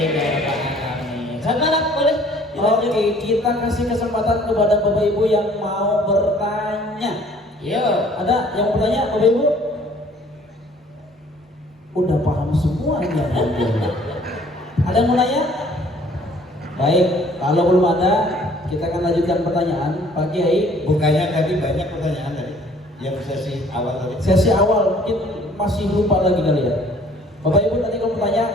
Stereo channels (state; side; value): normal; both; correlation 0.56